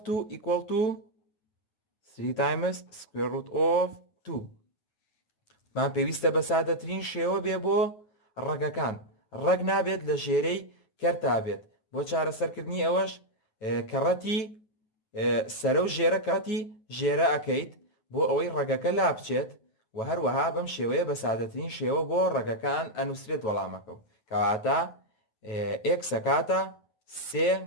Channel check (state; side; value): late; right; 9.5 ms